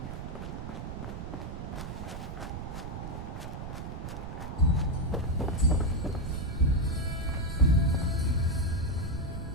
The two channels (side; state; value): right; noise; rumble, 7 dB below the sound